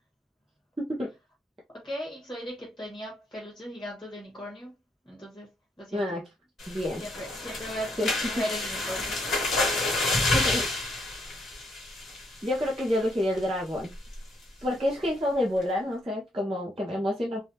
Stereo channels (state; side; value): normal; both; correlation 0.74